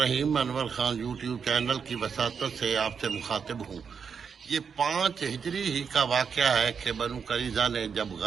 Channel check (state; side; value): quieter; left; 6.4 dB